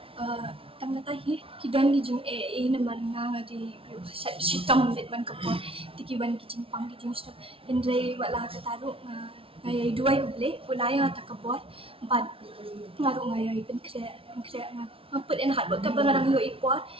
tang ta hi kidan ki jing namar nga di shitam let ban ka po tiki ban ki jing pang ki jing shitam hindrai wala ka taru ngai duai uble punaya takabot but ngaru ngai pen kre nga put in hard work ka barang yo ipot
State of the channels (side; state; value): left; late; 0.26 ms